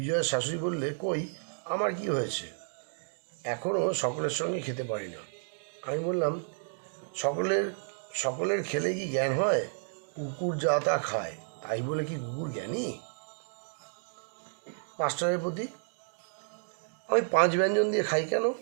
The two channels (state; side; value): silent; left; digital silence